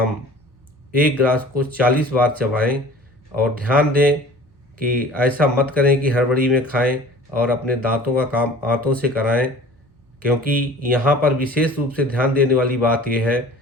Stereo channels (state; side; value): normal; both; correlation 0.44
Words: एक ग्रास को 40 बार चबाएं। और ध्यान दें कि ऐसा मत करें कि हड़बड़ी में खाएं और अपने दांतों का काम आंतों से कराएं, क्योंकि यहाँ पर विशेष रूप से ध्यान देने वाली बात यह है